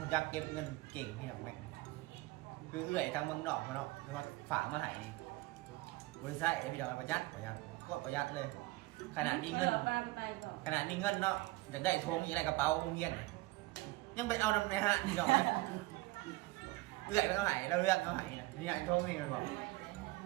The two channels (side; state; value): left; quieter; 20.3 dB